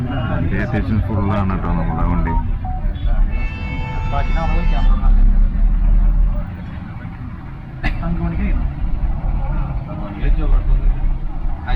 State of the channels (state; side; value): identical; both; correlation 1.00